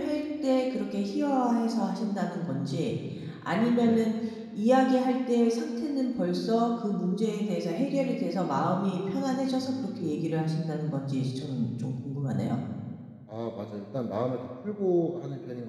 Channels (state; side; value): identical; both; correlation 1.00